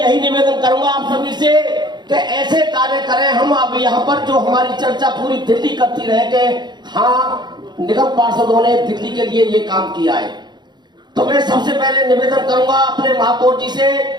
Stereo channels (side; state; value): left; late; 0.21 ms